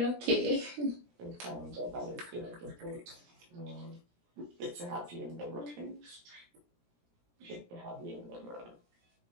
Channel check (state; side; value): late; left; 17 ms